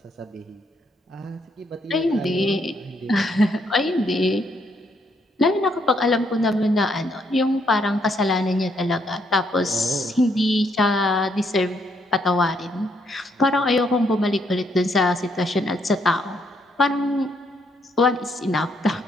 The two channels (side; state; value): both; normal; correlation 0.73